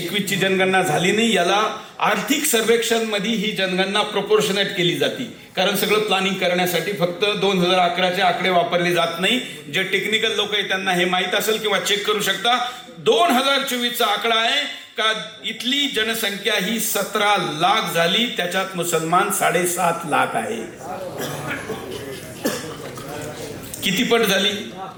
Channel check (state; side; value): identical; both; correlation 1.00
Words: जनगणना झाली नाही. याला आर्थिक सर्वेक्षण मध्ये ही जनगणना प्रोपोर्शनेट केली जाते, कारण सगळं प्लॅनिंग करण्यासाठी फक्त 2011चे आकडे वापरले जात नाही. जे टेक्निकल लोक आहेत त्यांना हे माहीत असेल किंवा चेक करू शकता. 2024चा आकडा आहे का इथली जनसंख्या ही 17 लाख झाली, त्याच्यात मुसलमान 7.5 लाख आहे. किती पट झाली?